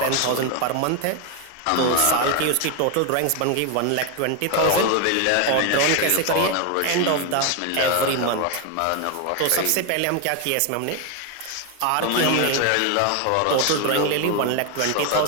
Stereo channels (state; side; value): different; both; correlation 0.01